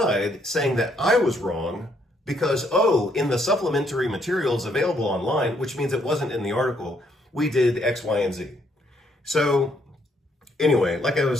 saying that I was wrong because, in the supplementary materials available online, which means it wasn't in the article, we did X, Y, and Z. So anyway, like I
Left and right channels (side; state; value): both; normal; correlation 0.71